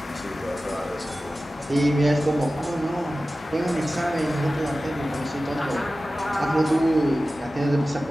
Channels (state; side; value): normal; both; correlation 0.95